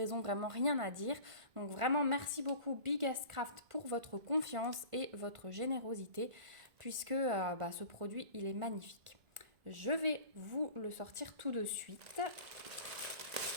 vraiment rien à dire. Donc vraiment merci beaucoup Biggest Craft pour votre confiance et votre générosité puisque ce produit il est magnifique. Je vais vous le sortir tout de suite.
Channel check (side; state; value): left; late; 1.9 ms